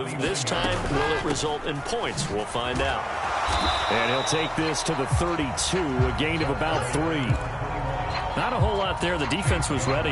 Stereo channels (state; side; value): identical; both; correlation 1.00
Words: This time, will it result in points? We'll find out. And he'll take this to the 32, a gain of about 3. Not a whole lot there. The defense was ready,